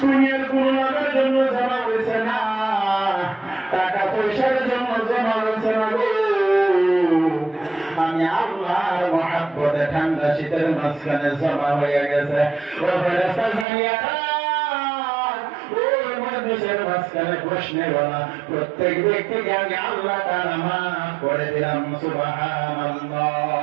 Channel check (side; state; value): left; drops out; at 13.7 s